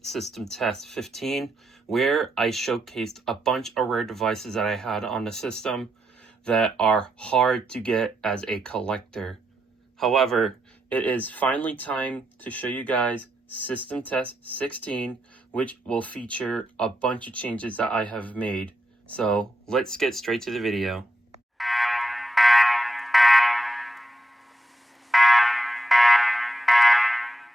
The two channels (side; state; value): both; normal; correlation 0.83